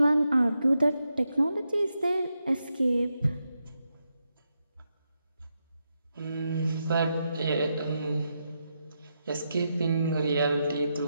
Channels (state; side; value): inverted; both; correlation -0.85